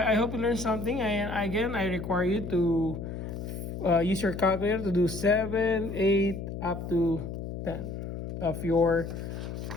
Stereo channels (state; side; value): noise; left; hum, 7 dB below the sound